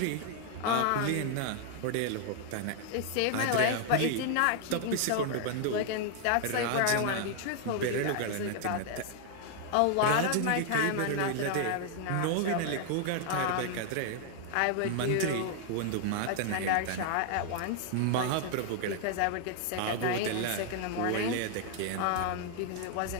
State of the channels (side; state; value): both; different; correlation 0.00